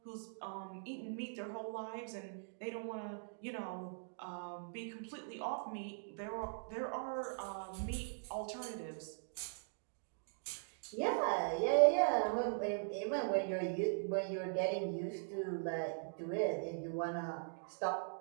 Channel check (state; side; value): silent; left; digital silence